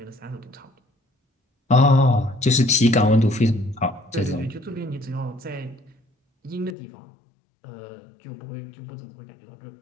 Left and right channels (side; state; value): right; drops out; at 6.8 s